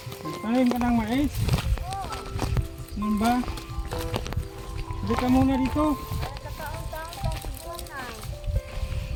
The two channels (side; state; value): both; identical; correlation 1.00